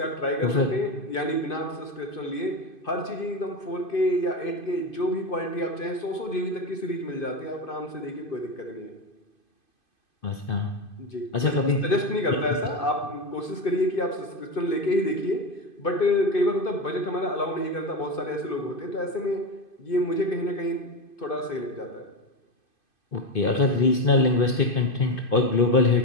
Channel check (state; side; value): late; right; 2.5 ms